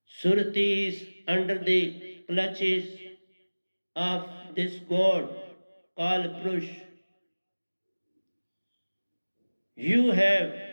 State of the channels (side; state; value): both; inverted; correlation -1.00